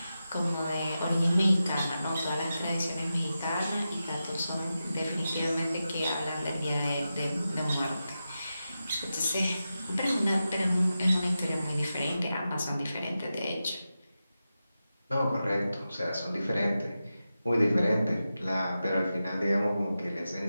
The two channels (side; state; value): both; inverted; correlation -0.91